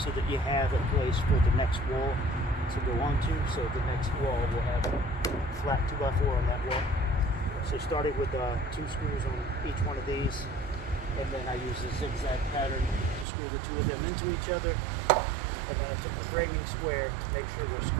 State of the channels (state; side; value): drops out; left; at 13.2 s